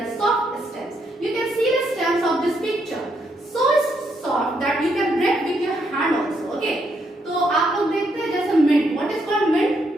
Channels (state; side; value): normal; both; correlation 0.76